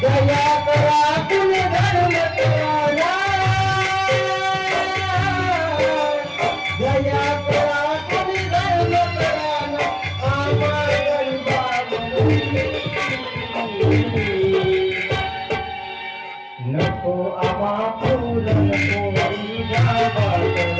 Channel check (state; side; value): identical; both; correlation 1.00